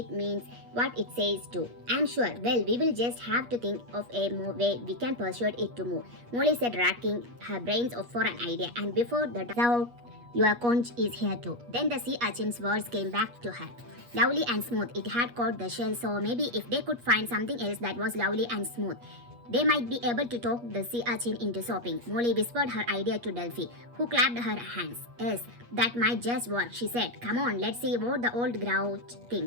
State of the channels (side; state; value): left; late; 8.4 ms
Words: means what it says too. I'm sure. Well, we will just have to think of a way we can persuade it to move, Molly said, racking her brains for an idea, and before the doubt, your conch is here too. Then the sea urchin's words came back to her. Lovely and smooth, it had caught the shell, so maybe if they could find something else that was lovely and smooth, they might be able to talk the sea urchin into sopping. Molly whispered her idea to Delphi, who clapped her hands. Yes, that might just work, she said. Come on, let's see what the old grouch